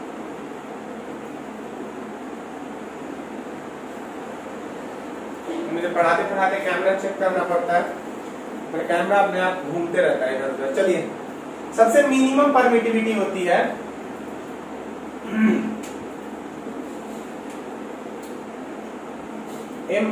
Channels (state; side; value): identical; both; correlation 1.00